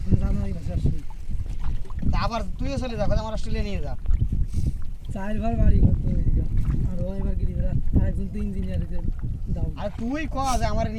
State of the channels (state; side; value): identical; both; correlation 1.00